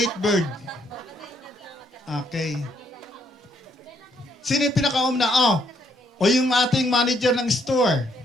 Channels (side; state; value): both; normal; correlation 0.71